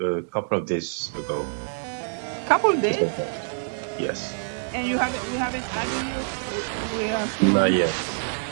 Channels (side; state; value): left; silent; digital silence